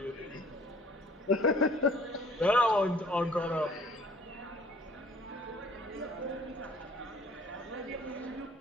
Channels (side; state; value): both; normal; correlation 0.55